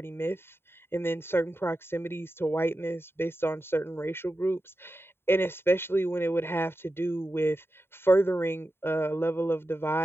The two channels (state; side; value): late; right; 0.11 ms